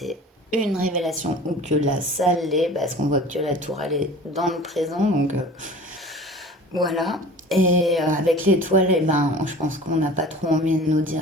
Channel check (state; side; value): normal; both; correlation 0.42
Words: une révélation ou que là ça l'est, parce qu'on voit que la tour elle est dans le présent, donc voilà. Et avec l'étoile, eh ben, je pense qu'on n'a pas trop envie de nous